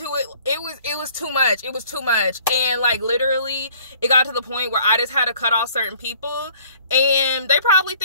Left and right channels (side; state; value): both; inverted; correlation -0.55